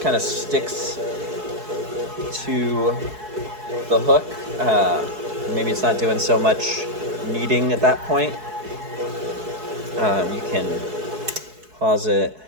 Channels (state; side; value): late; left; 4.7 ms